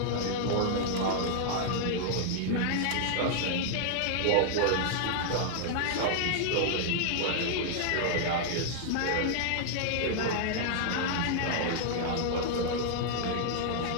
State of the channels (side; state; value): both; different; correlation -0.01